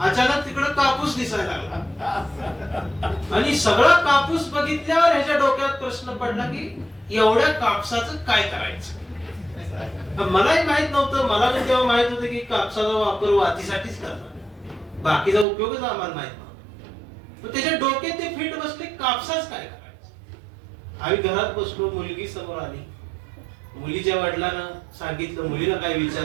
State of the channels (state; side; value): drops out; left; at 15.5 s